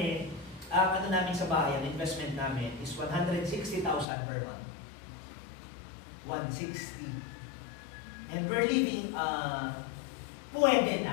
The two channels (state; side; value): drops out; right; at 4.0 s